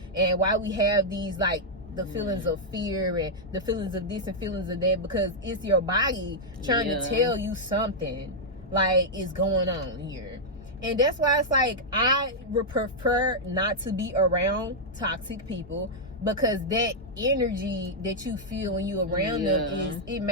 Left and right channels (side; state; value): both; normal; correlation -0.05